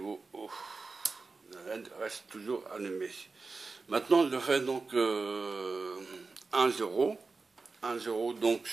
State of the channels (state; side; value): quieter; left; 4.1 dB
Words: haut. La LED reste toujours allumée. Maintenant, je fais donc 1, 0. 1, 0, donc